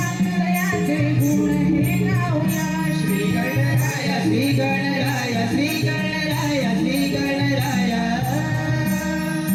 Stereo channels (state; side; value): identical; both; correlation 1.00